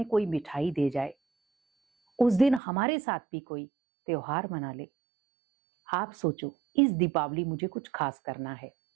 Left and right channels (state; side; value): drops out; left; at 2.6 s